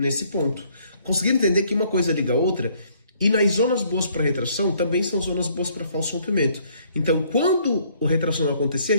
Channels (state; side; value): inverted; both; correlation -0.64